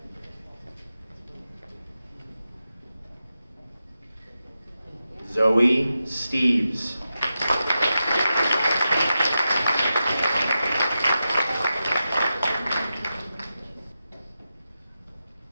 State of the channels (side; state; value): both; inverted; correlation -0.90